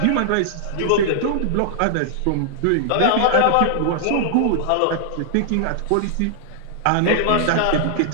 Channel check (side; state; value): both; different; correlation -0.01